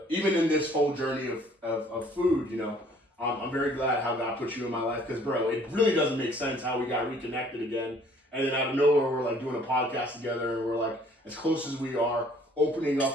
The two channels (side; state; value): both; normal; correlation 0.58